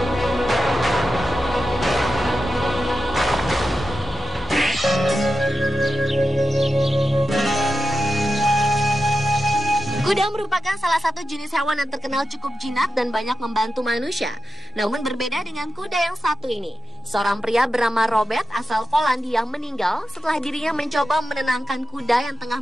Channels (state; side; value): normal; both; correlation 0.90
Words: Kuda merupakan salah satu jenis hewan yang terkenal cukup jinak dan banyak membantu manusia. Namun berbeda dengan kuda yang satu ini. Seorang pria bernama Robert asal Polandia meninggal setelah dirinya mencoba menenangkan kuda yang tengah